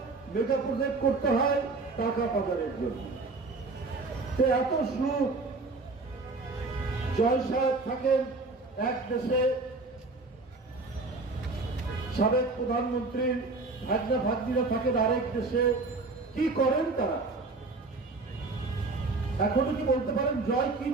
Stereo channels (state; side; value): quieter; left; 3.6 dB